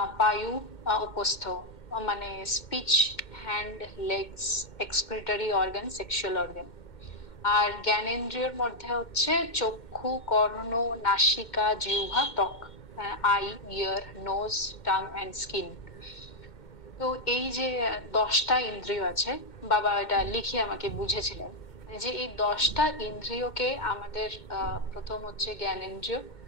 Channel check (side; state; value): right; late; 2.1 ms